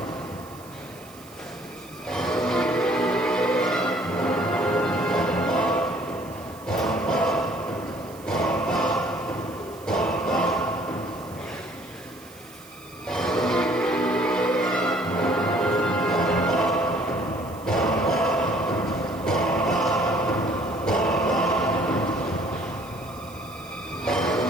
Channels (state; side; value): noise; right; hiss, 22 dB below the sound